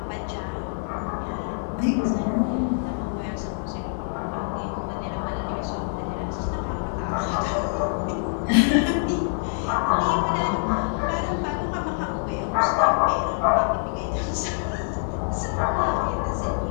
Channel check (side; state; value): right; silent; digital silence